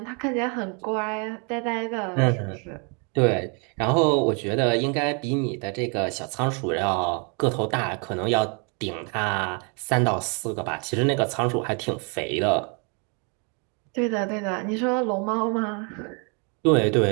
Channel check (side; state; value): left; quieter; 35.7 dB